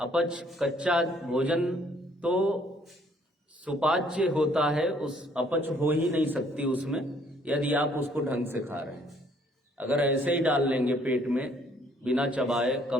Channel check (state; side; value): normal; both; correlation 0.63